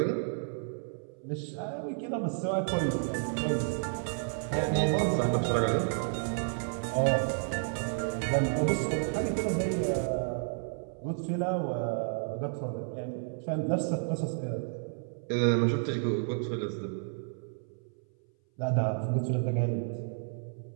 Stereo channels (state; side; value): silent; left; 57 dB below the other